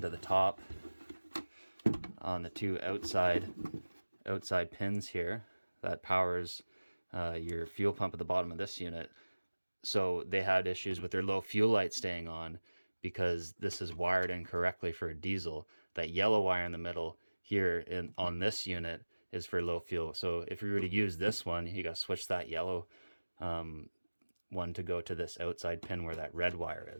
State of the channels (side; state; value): both; inverted; correlation -1.00